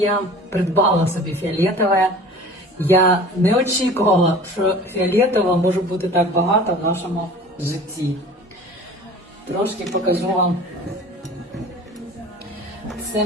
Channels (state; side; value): normal; both; correlation 0.42